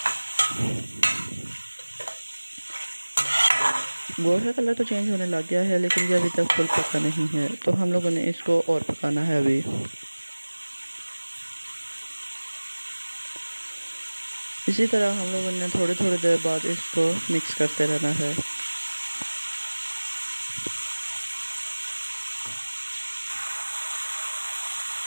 गोश्त का कलर तो चेंज होने लग गया है, लेकिन ये अभी तक फुल पका नहीं है, तो हम लोगों ने इसको और पकाना है अभी। इसी तरह हम लोगों ने थोड़ी थोड़ी देर बाद इसको मिक्स करते रहना है।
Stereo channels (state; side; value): inverted; both; correlation -1.00